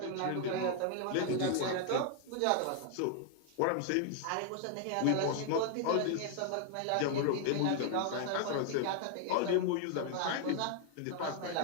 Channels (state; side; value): different; both; correlation 0.00